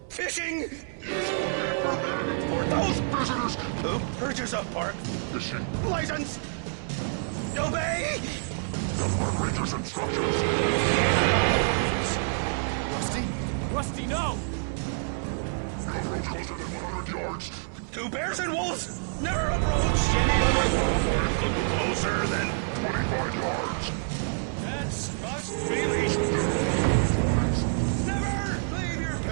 Fishing! For those visitors who purchase a park fishing license, obey the ranger's instructions. Rusty? Rusty, no! Never. No approach closer than 100 yards. Two bears and wolves never approach any other closer than 25 yards. Pets must be leashed. Fines. Never leave your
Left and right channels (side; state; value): left; silent; digital silence